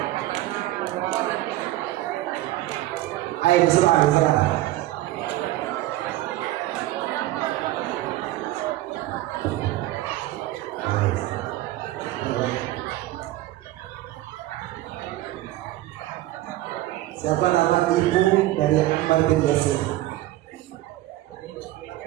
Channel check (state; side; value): quieter; left; 15.9 dB